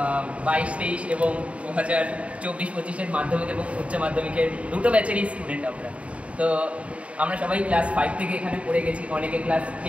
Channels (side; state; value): left; late; 0.064 ms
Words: এবং 2024-25-এর মাধ্যমিক এবং উচ্চ মাধ্যমিকের দুটো ব্যাচেরই স্টুডেন্ট আমরা। তো আমরা সবাই ক্লাস 5 থেকে এখানে পড়ে গেছি, অনেকে ক্লাস